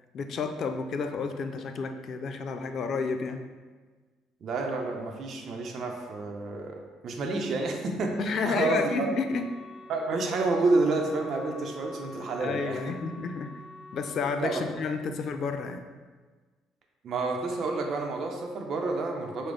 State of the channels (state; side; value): normal; both; correlation 0.69